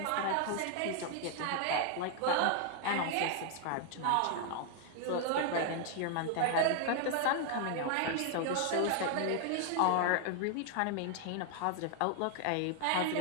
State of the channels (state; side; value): different; both; correlation 0.00